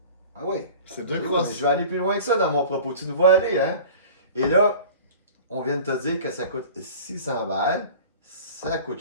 Ah oui? C'est 2 Oui, crosses. mais je vais aller plus loin que ça dans mon propos. Tu nous vois aller, hein? Et là, on vient de te dire que ça coûte 600 balles. Ça coûte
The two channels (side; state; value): both; inverted; correlation -0.41